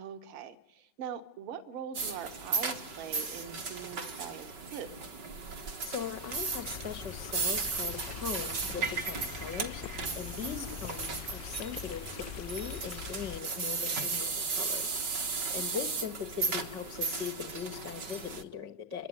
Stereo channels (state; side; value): late; left; 5.3 ms